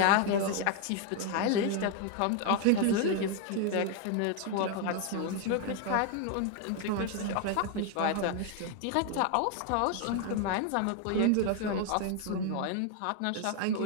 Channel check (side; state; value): both; different; correlation 0.01